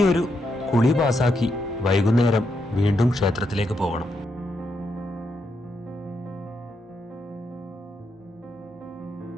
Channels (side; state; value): both; normal; correlation 0.81